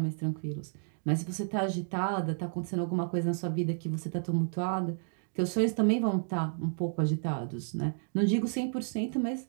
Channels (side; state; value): left; silent; digital silence